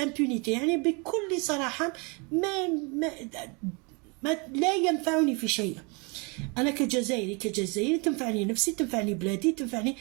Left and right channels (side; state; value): left; quieter; 31.1 dB